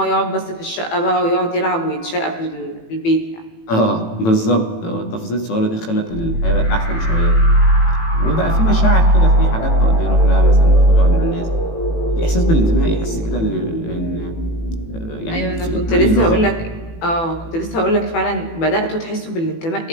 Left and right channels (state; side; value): late; right; 18 ms